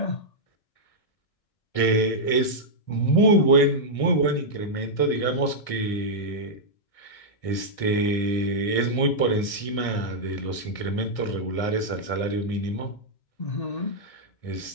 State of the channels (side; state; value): right; late; 1.6 ms